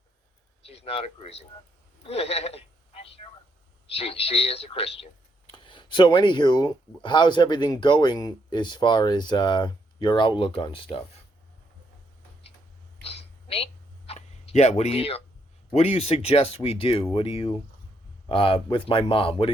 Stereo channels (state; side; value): normal; both; correlation 0.75